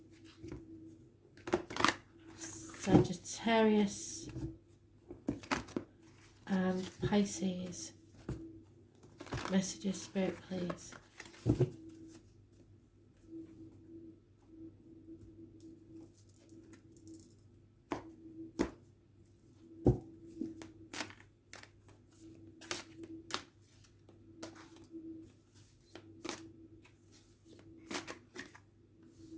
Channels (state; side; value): identical; both; correlation 1.00